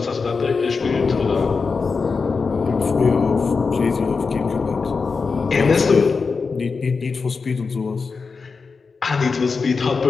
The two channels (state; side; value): quieter; right; 4.8 dB